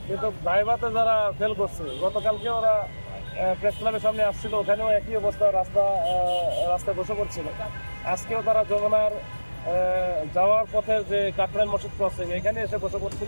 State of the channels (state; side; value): inverted; both; correlation -1.00